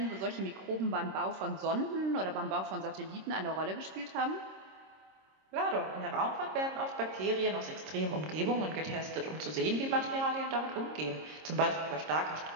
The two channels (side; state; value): left; late; 26 ms